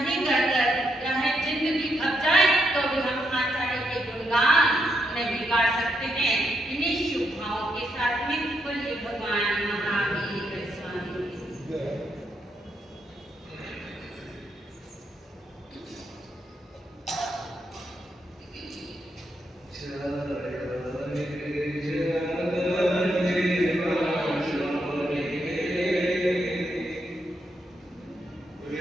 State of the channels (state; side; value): normal; both; correlation 0.80